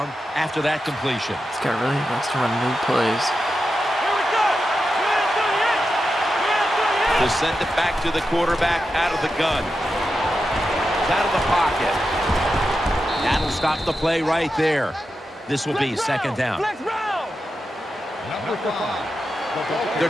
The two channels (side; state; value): both; normal; correlation 0.89